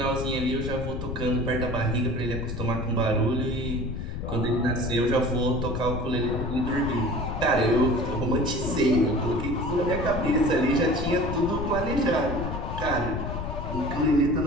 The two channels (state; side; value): noise; left; rumble, 5 dB below the sound